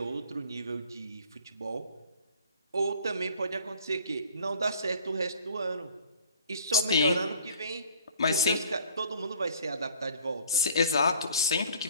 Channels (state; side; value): inverted; both; correlation -0.53